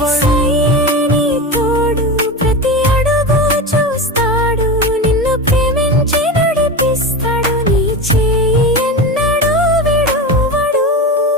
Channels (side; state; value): both; normal; correlation 0.23